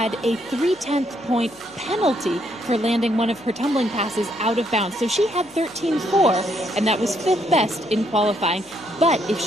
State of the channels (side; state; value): left; noise; hum, 29 dB below the sound